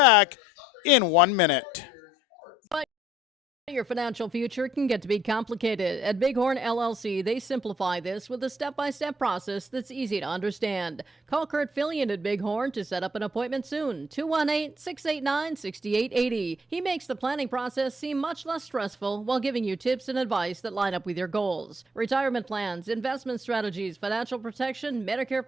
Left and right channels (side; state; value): both; normal; correlation 0.63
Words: in 1 minute. Your financial future can get to be complicated. At Bighorn LLC, they simplify this with a step-by-step process that's easy to understand. Call Kurt Fillion at Bighorn to set up an appointment soon. 218-689-6880. He makes the planning process seem much less stressful while giving you tips and advice that line up with your goals. Retirement plans, investment strategies, financial protection, Medicare